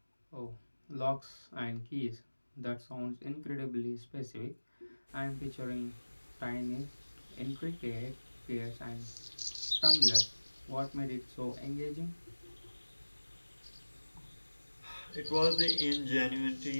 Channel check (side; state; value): both; inverted; correlation -1.00